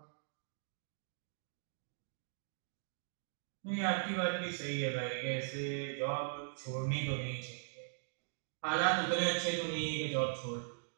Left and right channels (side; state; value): left; silent; digital silence